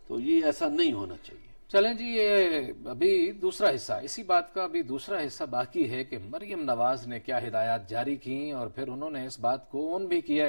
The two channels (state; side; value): inverted; both; correlation -1.00